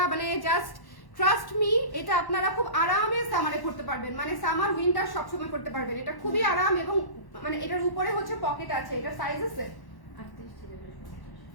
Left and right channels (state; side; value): late; right; 1.1 ms